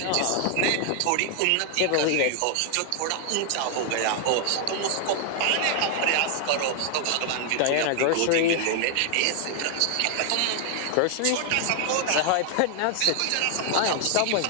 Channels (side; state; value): both; different; correlation 0.00